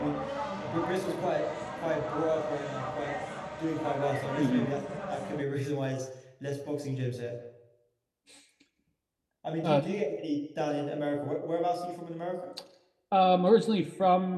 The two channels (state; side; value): identical; both; correlation 1.00